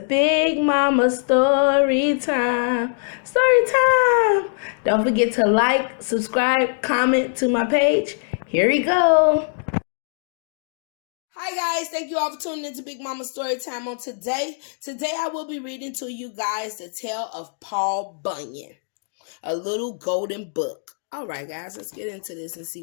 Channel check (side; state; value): right; silent; digital silence